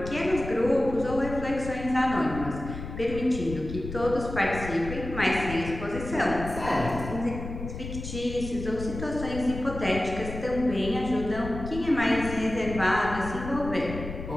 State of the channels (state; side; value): noise; left; rumble, 9 dB below the sound